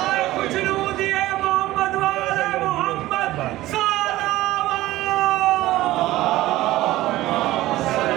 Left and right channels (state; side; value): quieter; left; 16.5 dB